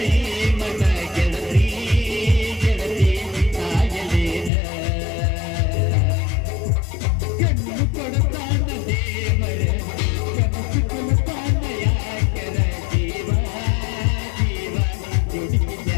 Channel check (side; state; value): right; drops out; at 4.5 s